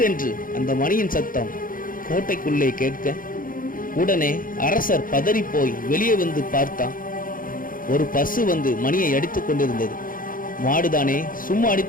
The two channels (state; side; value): late; right; 0.40 ms